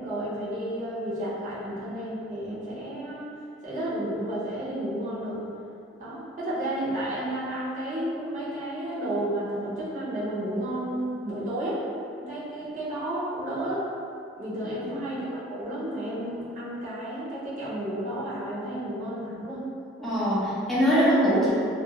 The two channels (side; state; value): both; normal; correlation 0.48